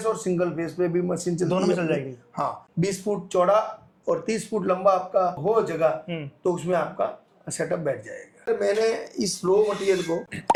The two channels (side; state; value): both; identical; correlation 1.00